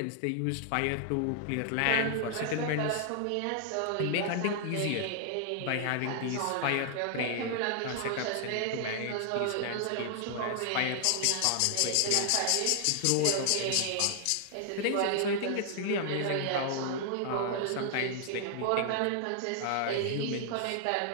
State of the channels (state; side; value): different; both; correlation 0.00